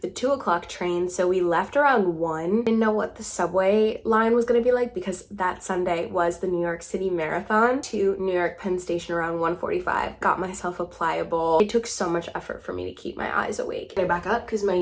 the 2 o'clock train, so we left around 1. Didn't know what the subway line was gonna be like because that Sunday was the New York City Marathon. To New York Penn Station around 1:45. Got myself a pliable. It took so much effort for me to keep my eyes awake. I back up because my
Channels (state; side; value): identical; both; correlation 1.00